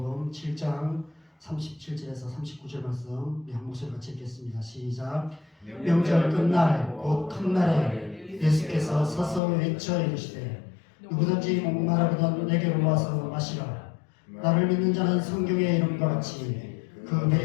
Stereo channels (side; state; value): right; drops out; at 9.4 s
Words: 7장 37절에서 39절 말씀 우리 한 목소리 같이 읽겠습니다. 시작. 명절 끝날 곧 큰 날에 예수께서 서서 외쳐 이르시되 누구든지 목마르거든 내게로 와서 마시라. 나를 믿는 자는 성경의 이름과 같이 그